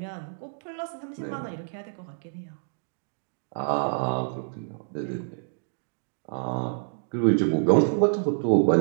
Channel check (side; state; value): left; silent; digital silence